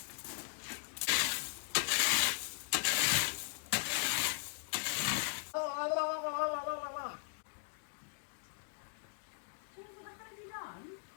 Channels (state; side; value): silent; right; digital silence